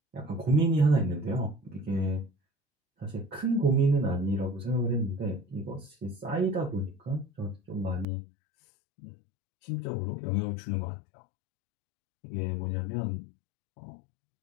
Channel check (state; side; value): drops out; right; at 8.1 s